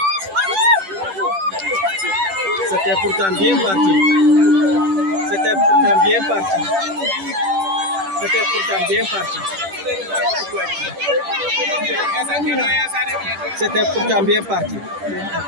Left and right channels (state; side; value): late; left; 10 ms